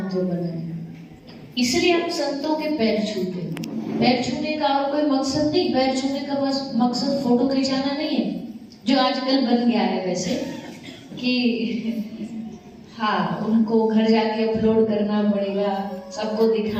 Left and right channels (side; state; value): both; identical; correlation 1.00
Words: बना है, इसलिए हम संतों के पैर छूते हैं। पैर छूने का और कोई मकसद नहीं, पैर छूने का बस मकसद फोटो खिंचाना नहीं है, जो आजकल बन गया है वैसे कि हाँ उनको घर जाके अपलोड करना पड़ेगा, सबको